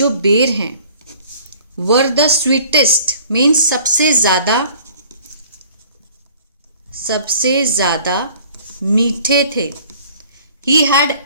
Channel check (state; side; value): inverted; both; correlation -0.52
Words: बेर हैं, वर द स्वीटेस्ट मीन्स सबसे ज़्यादा मीठे थे। ही हैड